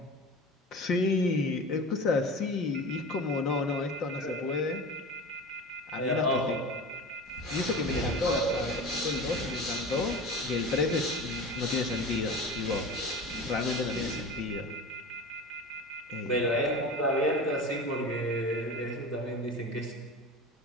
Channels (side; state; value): both; normal; correlation 0.32